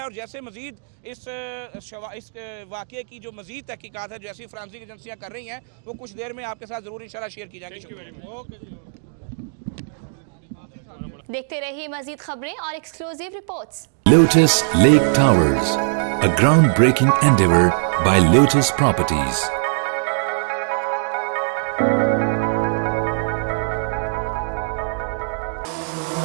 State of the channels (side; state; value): left; silent; digital silence